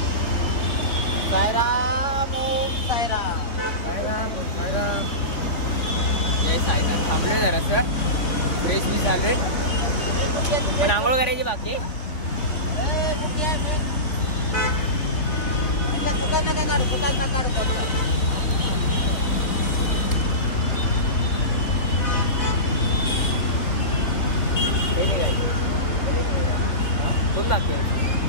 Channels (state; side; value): late; right; 3.8 ms